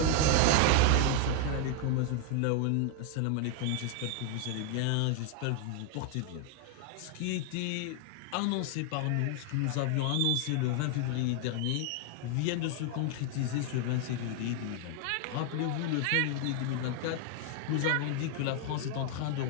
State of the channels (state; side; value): different; both; correlation 0.00